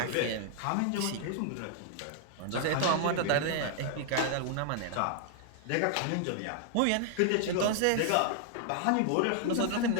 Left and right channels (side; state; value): both; different; correlation -0.01